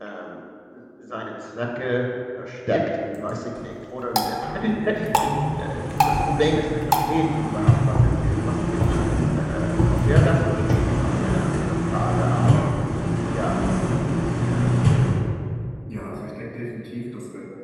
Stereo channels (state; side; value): identical; both; correlation 1.00